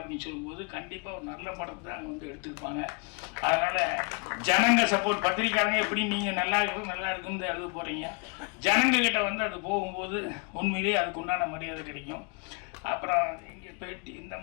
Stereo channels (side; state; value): right; quieter; 33.4 dB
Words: சொல்லும்போது கண்டிப்பாக ஒரு நல்ல படத்தை தான் வந்து எடுத்திருப்பாங்க. அதனால் ஜனங்க சப்போர்ட், பத்திரிக்காரங்க எப்படி நீங்கள் நல்லா இருக்குன்னு எழுத போகிறீங்க, ஜனங்கக்கிட்ட வந்து அது போகும்போது உண்மையிலேயே அதுக்கு உண்டான மரியாதை கிடைக்கும். அப்புறம் இங்கே பேட்டி இந்த